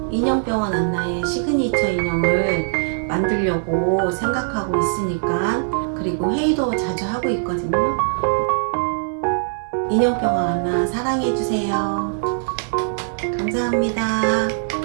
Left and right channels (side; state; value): left; silent; 63 dB below the other